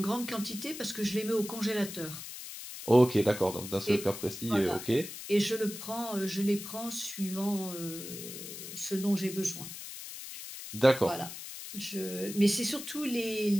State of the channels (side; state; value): left; noise; hiss, 10 dB below the sound